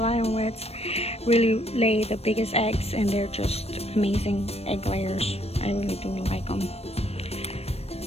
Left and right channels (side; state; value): right; late; 0.29 ms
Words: Island Reds really lay the biggest eggs, and they're just amazing egg layers. I really do like them.